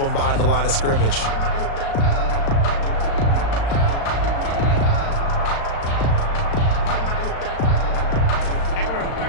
behind the line of scrimmage.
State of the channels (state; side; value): late; right; 36 ms